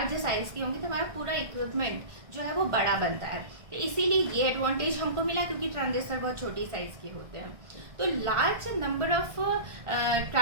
साइज की होंगी तो हमारा पूरा इक्विपमेंट जो है वो बड़ा बनता है, तो इसीलिए ये एडवांटेज हमको मिला, क्योंकि ट्रांजिस्टर बहुत छोटी साइज के होते हैं। तो large number of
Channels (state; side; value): late; left; 1.6 ms